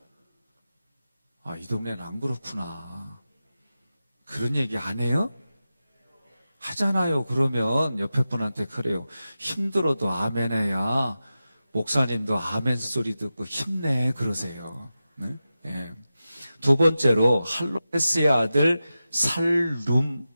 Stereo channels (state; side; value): inverted; both; correlation -0.93